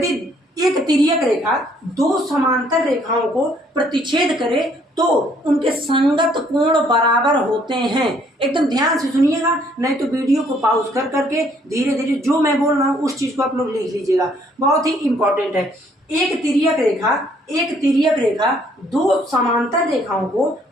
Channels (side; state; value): both; normal; correlation 0.65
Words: एक तिर्यक रेखा 2 समांतर रेखाओं को प्रतिच्छेद करे तो उनके संगत कोण बराबर होते हैं। एकदम ध्यान से सुनिएगा, नहीं तो वीडियो को पॉज कर करके धीरे धीरे जो मैं बोल रहा हूँ उस चीज को आप लोग लिख लीजिएगा, बहुत ही इंपॉर्टेंट है। एक तिर्यक रेखा 2 समांतर रेखाओं को